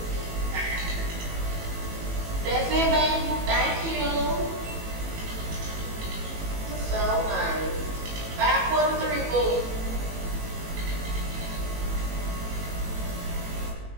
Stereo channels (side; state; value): left; late; 18 ms